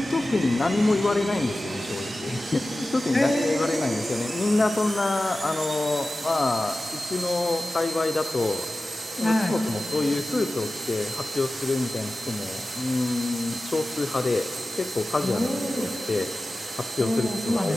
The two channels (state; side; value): normal; both; correlation 0.95